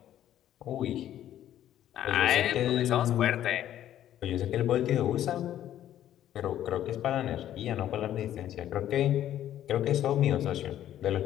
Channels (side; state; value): right; quieter; 11.7 dB